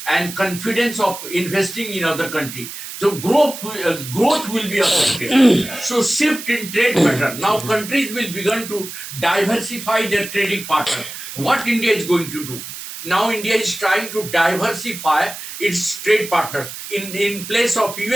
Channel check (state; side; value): noise; right; hiss, 10 dB below the sound